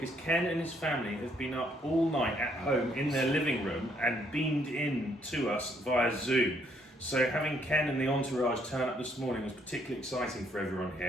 Ken and his family have been up all night at home in their living room and beamed in to us via Zoom. So having Ken and the entourage turn up this morning was particularly exciting for everyone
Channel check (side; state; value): both; normal; correlation 0.69